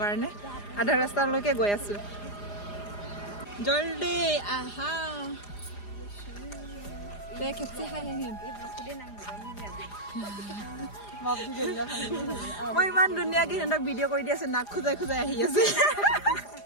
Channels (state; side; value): late; right; 4.9 ms